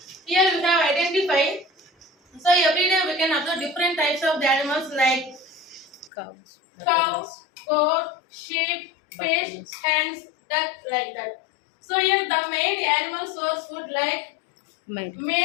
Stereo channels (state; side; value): drops out; right; at 6.1 s